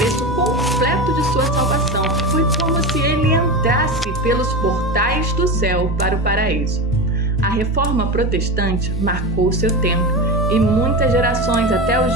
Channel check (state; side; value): normal; both; correlation 0.22